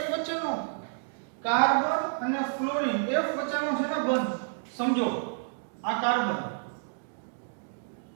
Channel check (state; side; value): silent; left; digital silence